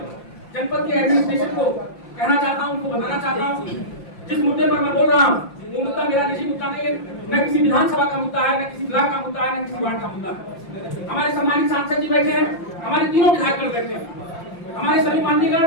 जनपद के एडमिनिस्ट्रेशन को कहना चाहता हूं, उनको बताना चाहता हूं, जिस मुद्दे पर मैं बोल रहा हूं वो मुद्दा मेरा निजी मुद्दा नहीं है, न किसी विधानसभा का मुद्दा है, न किसी ब्लॉक का मुद्दा है, न किसी वार्ड का मुद्दा है। हमारे सम्मानित सांसद जी बैठे हैं, हमारे तीनों विधायक बैठे हैं, हमारे सभी माननीयगण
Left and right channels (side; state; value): right; late; 5.8 ms